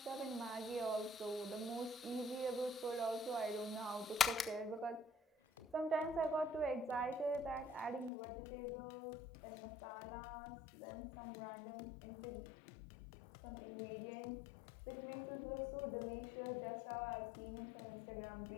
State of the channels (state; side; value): drops out; right; at 8.1 s